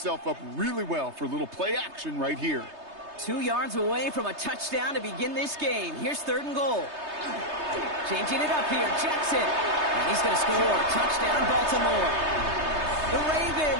up really well for a little play action right here. 2 yards away from a touchdown to begin this game. Here's 3rd and goal. Changing it up here, Jackson. And he's going to score. Touchdown, Baltimore. The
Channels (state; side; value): late; left; 3.3 ms